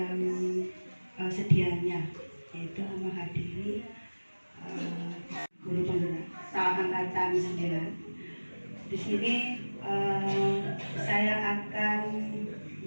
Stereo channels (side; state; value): both; inverted; correlation -1.00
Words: sedianya yaitu menghadiri guru penggerak angkatan 9. Di sini saya akan